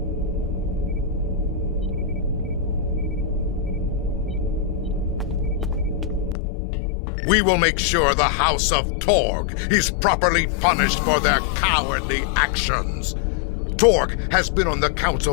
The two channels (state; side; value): drops out; right; at 6.4 s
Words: We will make sure the House of Torg is properly punished for their cowardly actions. Torg has been on the